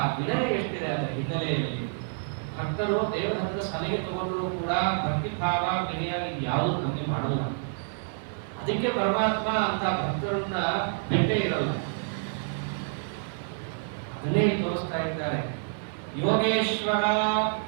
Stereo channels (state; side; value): silent; left; digital silence